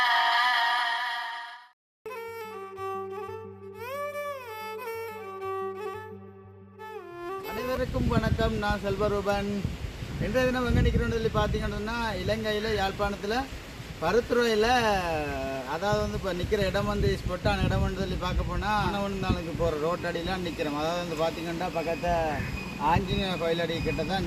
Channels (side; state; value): both; identical; correlation 1.00